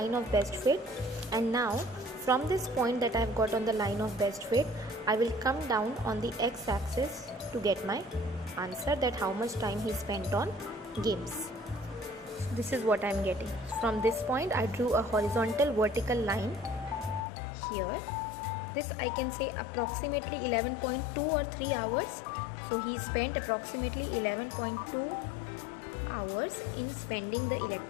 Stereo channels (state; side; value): drops out; right; at 17.2 s